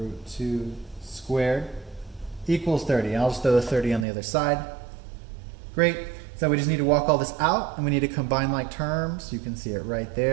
2 squared equals 30. I'll just throw the 30 on the other side. Great. So we just need to walk all this out, and we need to combine like terms. You can see it right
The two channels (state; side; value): drops out; left; at 4.0 s